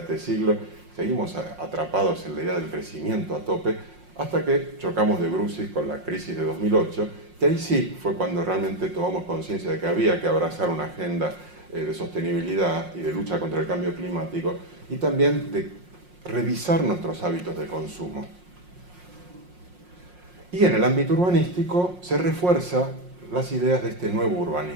este siglo, seguimos atrapados en la idea del crecimiento a tope, hasta que chocamos de brucis con la crisis de 2008, que ahí sí fue cuando realmente tomamos conciencia de que había que abrazar una agenda de sostenibilidad y de lucha contra el cambio climático, y también de revisar nuestros hábitos de consumo. Y en el ámbito urbanístico se refuerzan las ideas de este nuevo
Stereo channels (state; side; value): late; left; 5.6 ms